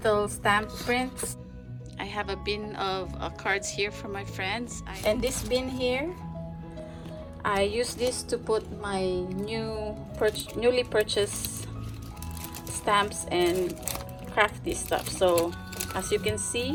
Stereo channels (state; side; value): identical; both; correlation 1.00